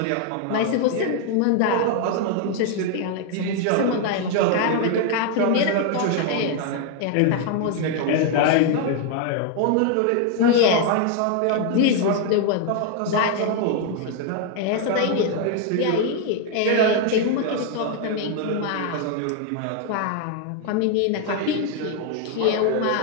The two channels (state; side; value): different; both; correlation 0.00